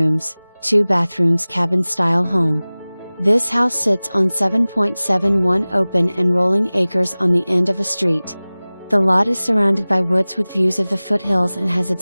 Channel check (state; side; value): inverted; both; correlation -0.99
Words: 2 bathrooms cabin-style home. This house sits on 7.71 open and rolling acres on the end of a street. The lot is surrounded by woods with views of the foothills and has